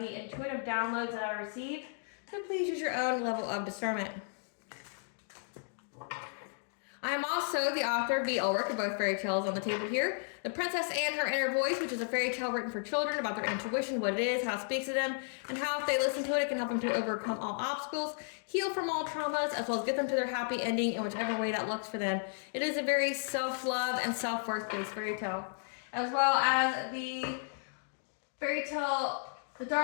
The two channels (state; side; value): silent; right; digital silence